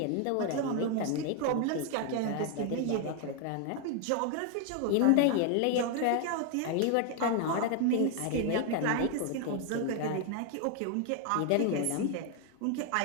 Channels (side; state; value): both; different; correlation 0.00